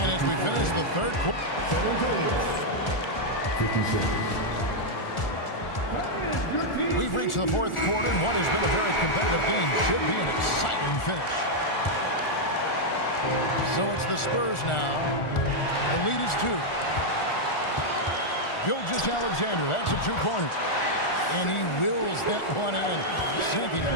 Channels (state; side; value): late; right; 1.4 ms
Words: as we finish the third quarter. 56. We've reached the fourth quarter, and what has been a very competitive game should be an exciting finish. So it's the Spurs now. The lead is 2. Gilgeous-Alexander, that's a 2-pointer. And he wills that one in, sinking